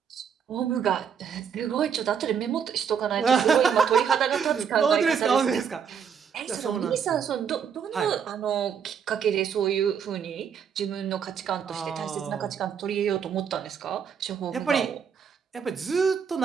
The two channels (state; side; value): quieter; left; 7.2 dB